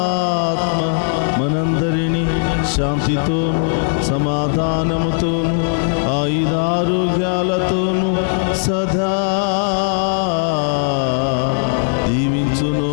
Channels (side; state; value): right; silent; 55 dB below the other